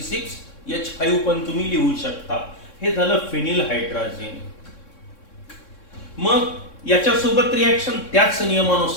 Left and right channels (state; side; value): late; right; 3.6 ms